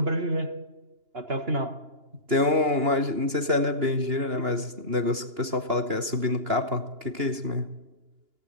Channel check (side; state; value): left; late; 2.9 ms